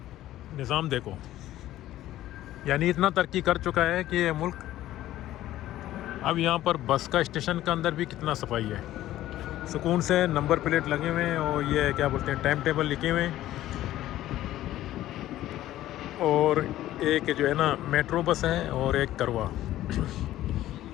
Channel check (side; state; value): right; quieter; 14.1 dB